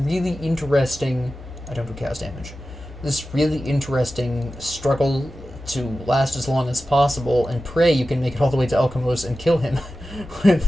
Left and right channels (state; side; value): normal; both; correlation 0.94